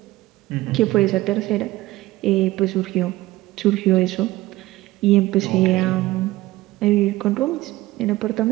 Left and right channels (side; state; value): left; quieter; 17.6 dB